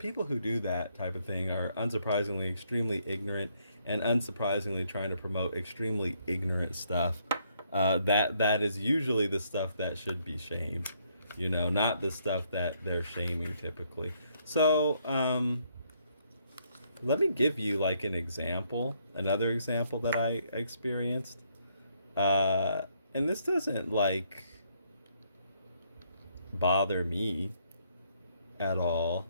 who do that type of thing are unsurprisingly extremely ignorant, and unsurprisingly trying to promote extremely ignorant stuff. That is usually the stuff that should be shamed, not the stuff that they're shaming typically. So let me give you like another example that I experienced. And this doesn't like bother me at all,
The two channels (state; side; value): inverted; both; correlation -0.71